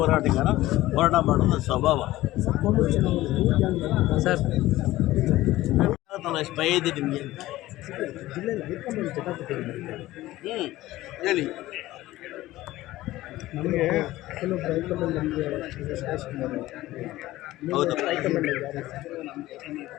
ಮಾಡೋದು ನನ್ನ ಸ್ವಭಾವ. ಸರ್ ಭಯ ಇದೆ ನಿಮಗೆ? ಹೇಳಿ. ಹೌದಾ?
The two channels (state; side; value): quieter; right; 16.6 dB